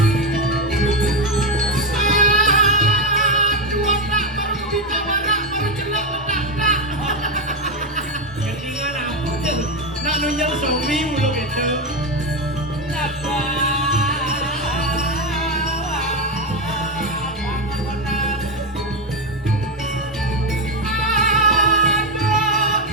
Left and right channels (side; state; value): both; normal; correlation 0.10